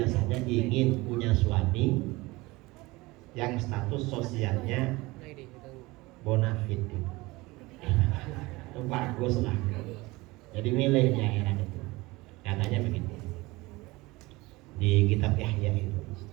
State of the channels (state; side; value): quieter; left; 21.8 dB